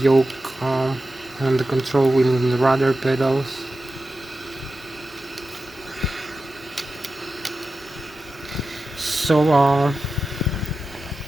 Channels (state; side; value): normal; both; correlation 0.92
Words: and the control wheel and the rudder pedals. So